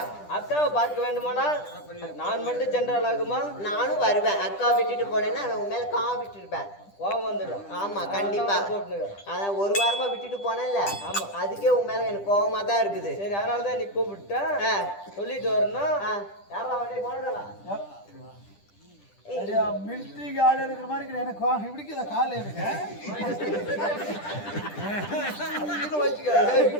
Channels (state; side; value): late; right; 10 ms